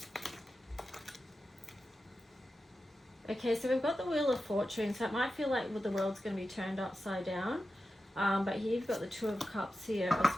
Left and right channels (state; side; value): normal; both; correlation 0.92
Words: Okay, so we've got the Wheel of Fortune, so it might feel like the world's going to be turned upside down. But here you've got the Two of Cups here